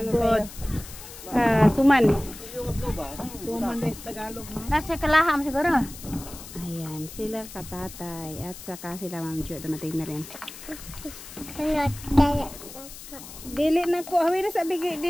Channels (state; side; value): noise; left; hiss, 14 dB below the sound